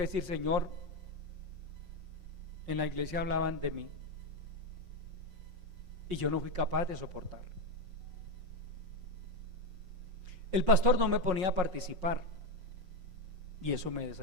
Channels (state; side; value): late; left; 5.5 ms